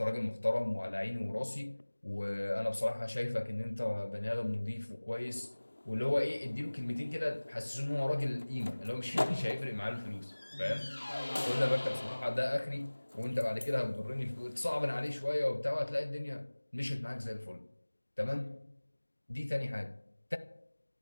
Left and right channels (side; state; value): both; inverted; correlation -1.00